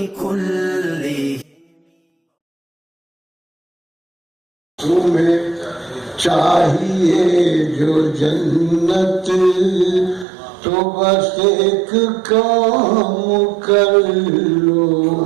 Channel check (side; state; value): left; drops out; at 10.2 s